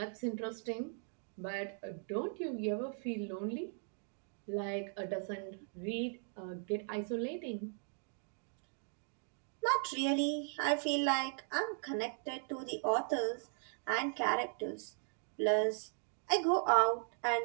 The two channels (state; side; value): silent; left; 52 dB below the other